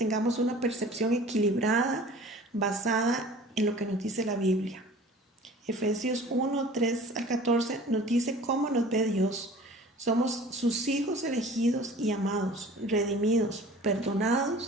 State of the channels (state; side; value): normal; both; correlation 0.45